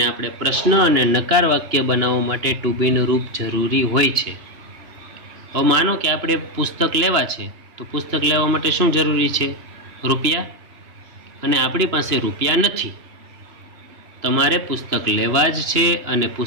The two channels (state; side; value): late; left; 2.9 ms